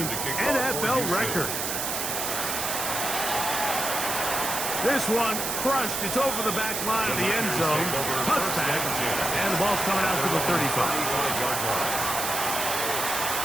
NFL record. This one crushed. It's over the back line of the end zone. Touchback. And the ball's coming out to the 35. 35-yard line.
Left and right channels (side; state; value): right; noise; hiss, 2 dB below the sound